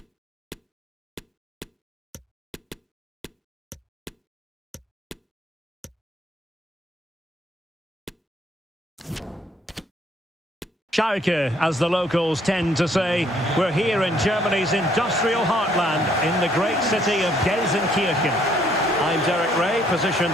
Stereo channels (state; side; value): normal; both; correlation 0.65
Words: Schalke, as the locals tend to say. We're here in Germany's industrial heartland, in the great city of Gelsenkirchen. I'm Derek Ray,